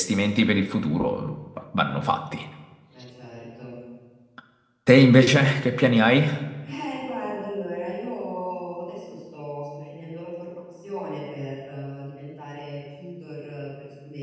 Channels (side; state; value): both; identical; correlation 1.00